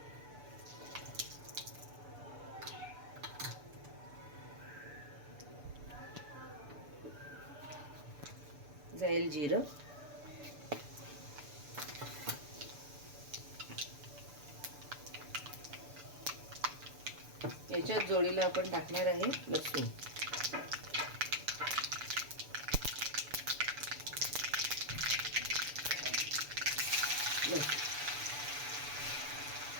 जाईल जिरं. याच्यात जोडीला आपण टाकणार आहे लसूण.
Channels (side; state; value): left; late; 6.9 ms